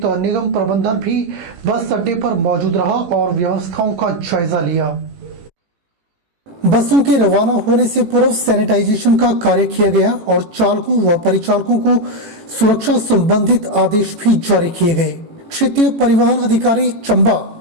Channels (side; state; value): left; late; 18 ms